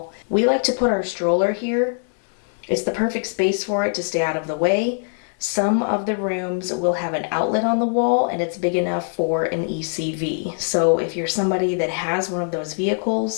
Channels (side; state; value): right; silent; digital silence